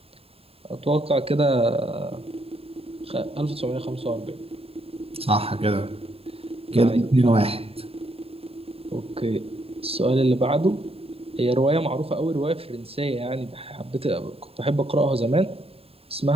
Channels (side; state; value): left; late; 0.28 ms